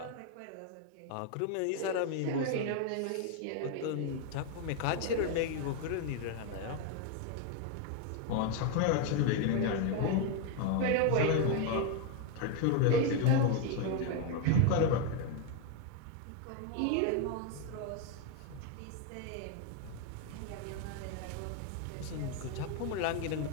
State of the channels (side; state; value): both; different; correlation 0.01